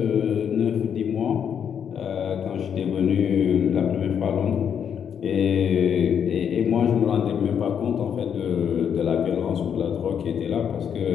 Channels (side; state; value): right; quieter; 8.0 dB